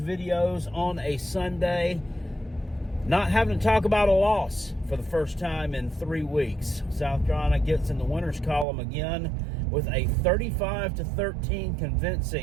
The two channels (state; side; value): drops out; left; at 8.7 s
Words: on a Sunday, not having to talk about a loss for the first time in 3 weeks. South Carolina gets in the winners column again with a 35-13